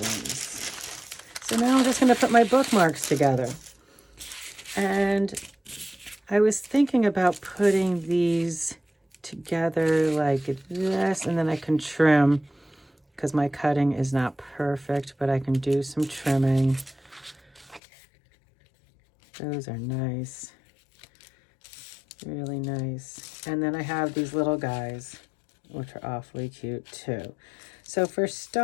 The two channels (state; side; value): drops out; right; at 17.8 s